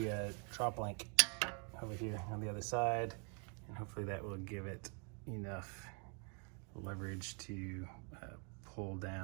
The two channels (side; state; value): left; quieter; 37.9 dB